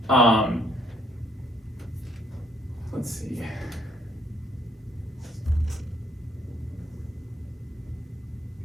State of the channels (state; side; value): normal; both; correlation 0.67